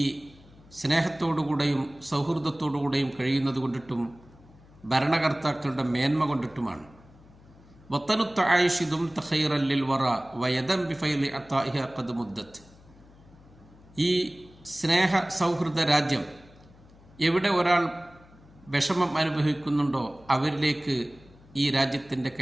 സ്നേഹത്തോടുകൂടെയും സൗഹൃദത്തോടുകൂടെയും കഴിയുന്നത് കൊണ്ടിട്ടും ഭരണകർത്താക്കളുടെ മേന്മ കൊണ്ടിട്ടുമാണ്. വത്തനുത്ത് ആയിഷിദും തഖൈറല്ലിൽ വറ വയദം ബിഫൈലി അത്താഇഹ ഖദ് മുദ്ദത്ത്, ഈ സ്നേഹ സൗഹൃദ രാജ്യം എവിടെ ഒരാൾ വിഷമം അനുഭവിക്കുന്നുണ്ടോ അവരിലേക്ക് ഈ രാജ്യത്തിൻ്റെ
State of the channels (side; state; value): left; noise; hum, 25 dB below the sound